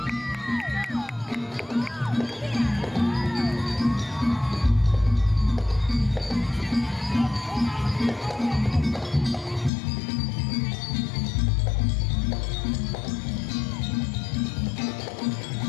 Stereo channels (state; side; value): drops out; right; at 9.7 s